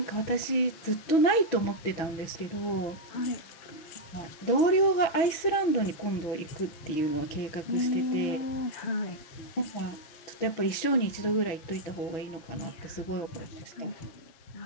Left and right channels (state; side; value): late; right; 6.1 ms